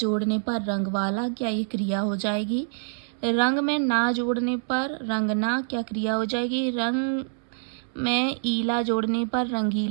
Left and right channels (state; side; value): silent; left; 61 dB below the other